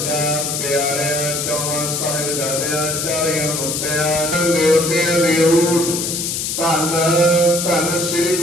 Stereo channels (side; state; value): left; noise; hiss, 2 dB below the sound